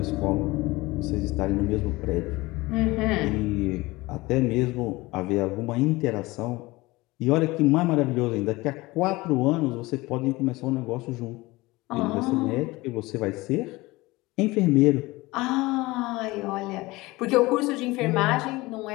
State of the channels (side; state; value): right; quieter; 21.1 dB